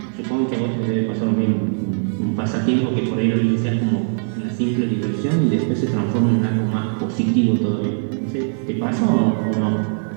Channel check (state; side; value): silent; left; 59 dB below the other